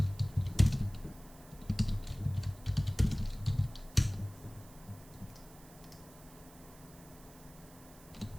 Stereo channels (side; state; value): right; noise; hiss, 22 dB below the sound